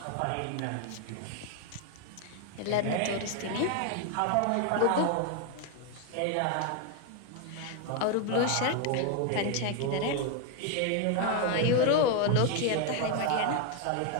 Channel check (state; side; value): different; both; correlation 0.01